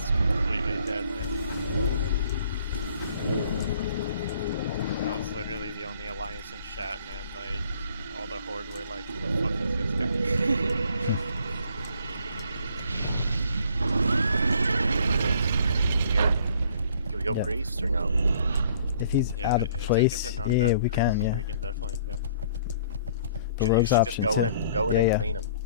completely dead, man. I was literally the only alliance in chat, man. Like all the horde were like, "Who the fuck is this guy?" Here. Can we go Yep. priest or no? If he's Yeah, out of place, it's a yeah, non-death we can, priest, yeah. We can definitely go. The You rogue's should option just too. go in Yeah, and yeah. clean him.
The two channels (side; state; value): both; inverted; correlation -0.58